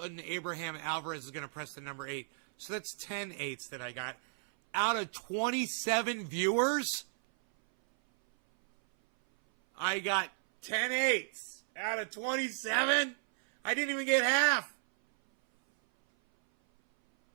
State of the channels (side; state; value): left; silent; 55 dB below the other